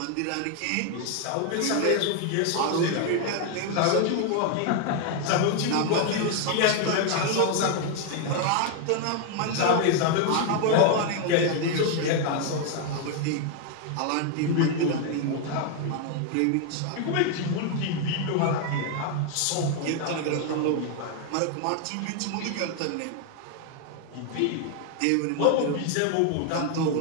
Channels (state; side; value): different; both; correlation 0.00